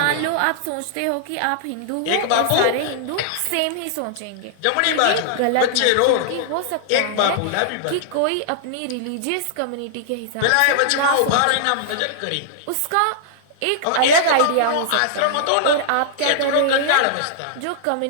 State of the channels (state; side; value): different; both; correlation -0.01